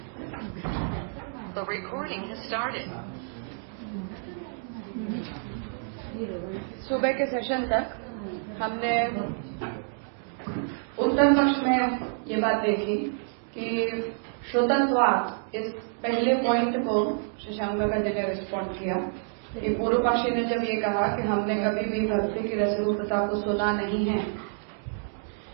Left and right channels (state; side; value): silent; left; digital silence